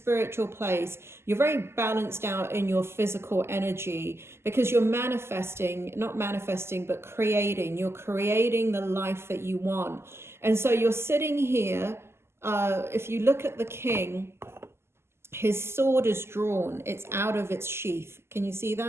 place, you're very balanced out in your physical energy, because you're manifesting, not manifesting, but creating. You're creating the life that you want. And so you're sitting here. If you look at the king, his sword is drawn. It's out of its sheath. Can you see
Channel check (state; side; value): late; left; 0.12 ms